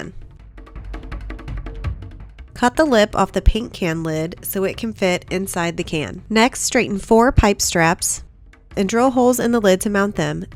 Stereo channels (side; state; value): both; identical; correlation 1.00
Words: Cut the lip off the paint can lid so it can fit inside the can. Next, straighten 4 pipe straps and drill holes in the lid to mount them.